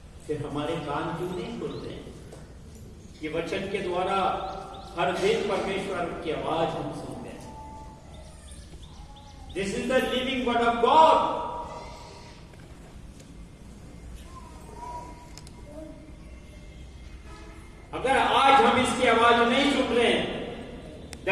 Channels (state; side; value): identical; both; correlation 1.00